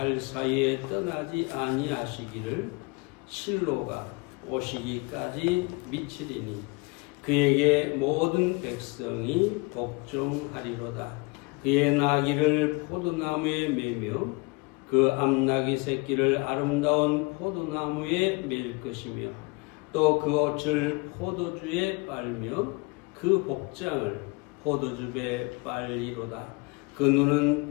사이에 떠나지 아니하시기를 실로가 오시기까지 미치리니 그에게 모든 백성이 복종하리로다. 그의 나귀를 포도나무에 매며 그 암나귀 새끼를 아름다운 포도나무에 맬 것이며 또 그 옷을 포도주에 빨며 그 복장을 포도즙에 빨리로다. 그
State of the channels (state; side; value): quieter; right; 27.7 dB